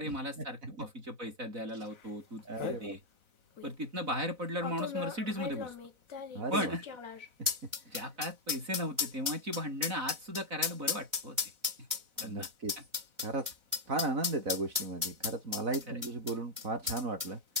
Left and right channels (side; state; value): left; late; 4.0 ms